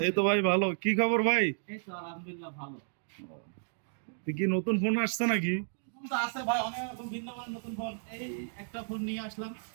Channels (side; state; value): left; silent; digital silence